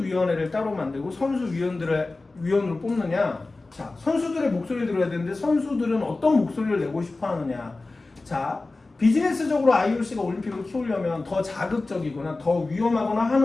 따로 만들고 위원으로 뽑느냐? 자, 선수들의 목소리를 들어야 되는데 선수들은 어떤 목소리를 내고 싶어 하느냐? 자, 비즈니스적으로 IOC가 올림픽을 키우려면 더 자극적이거나 더 위험하거나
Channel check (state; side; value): quieter; right; 3.3 dB